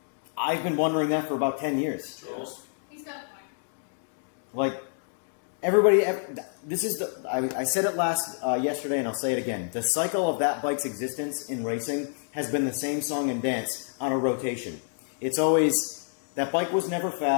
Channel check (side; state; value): right; silent; digital silence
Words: I've been wondering that for about 10 years. Trolls. He's got a point. Like, everybody, this is the, I said it yesterday and I'll say it again. The cycle of that bike's existence in racing has been the same song and dance on a rotation. It's always, that bike was never